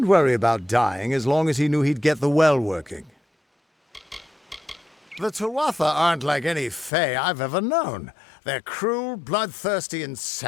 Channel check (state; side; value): drops out; right; at 6.9 s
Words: worry about dying as long as he knew he'd get the well working. The Tuatha aren't like any Fae I've ever known. They're cruel, bloodthirsty, and